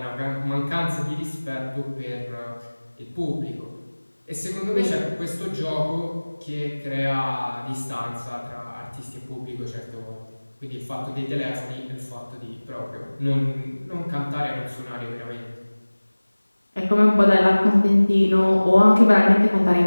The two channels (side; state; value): both; inverted; correlation -1.00